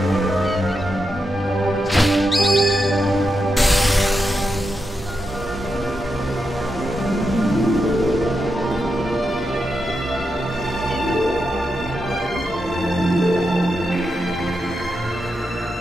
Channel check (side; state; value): both; normal; correlation 0.86